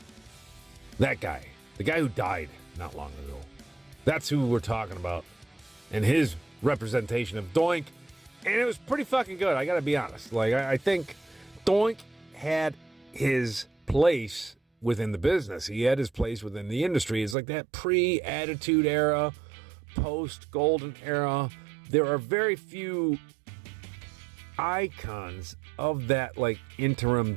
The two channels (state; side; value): drops out; left; at 17.4 s